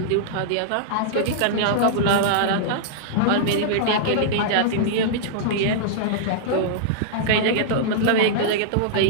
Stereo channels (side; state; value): both; different; correlation -0.02